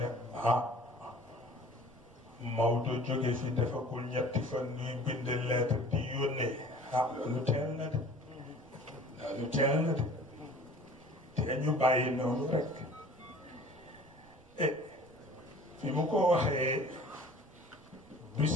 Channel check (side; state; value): right; noise; rumble, 26 dB below the sound